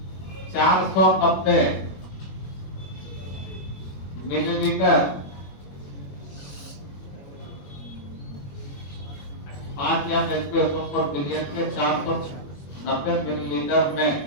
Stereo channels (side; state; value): right; late; 21 ms